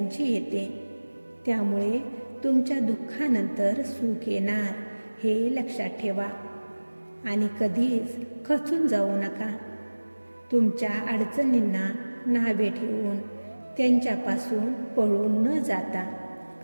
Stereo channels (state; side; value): inverted; both; correlation -1.00